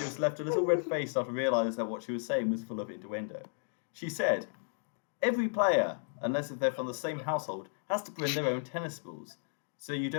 was left a little red-faced after realising that what she was saying was full of innuendo. She said, "Every player, unless if they're from the same household, has to bring their own tennis balls. So you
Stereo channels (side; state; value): right; silent; digital silence